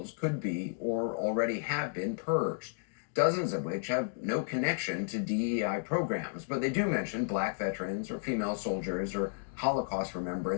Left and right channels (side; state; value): right; silent; digital silence